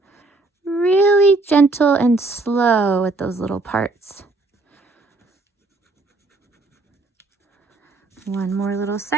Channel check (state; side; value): quieter; left; 3.3 dB